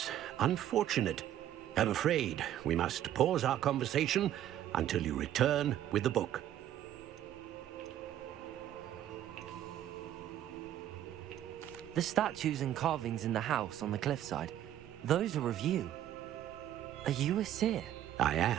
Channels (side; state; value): left; quieter; 11.7 dB